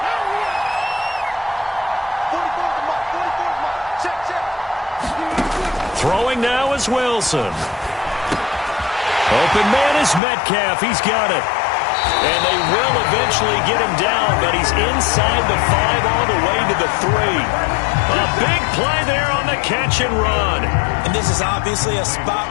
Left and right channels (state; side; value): drops out; right; at 10.2 s